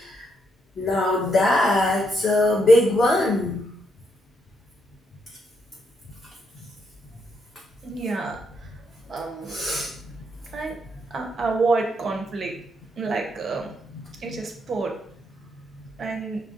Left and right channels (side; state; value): both; normal; correlation 0.77